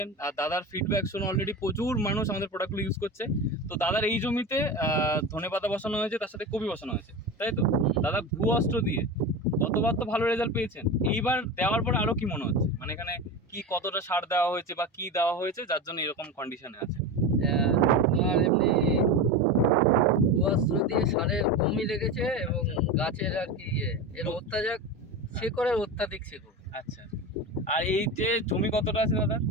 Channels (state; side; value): normal; both; correlation 0.25